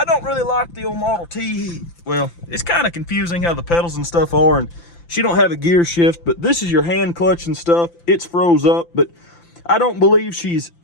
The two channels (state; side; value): late; right; 5.9 ms